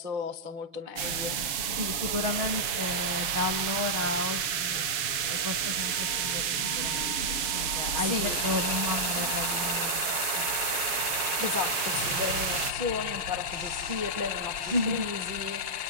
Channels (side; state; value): left; late; 6.4 ms